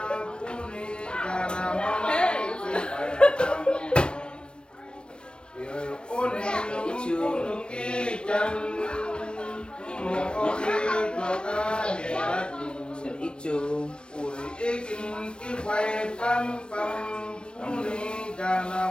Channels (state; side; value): late; right; 0.055 ms